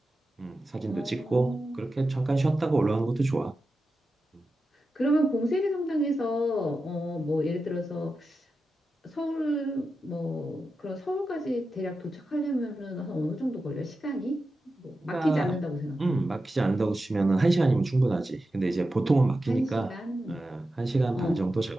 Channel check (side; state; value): both; normal; correlation 0.91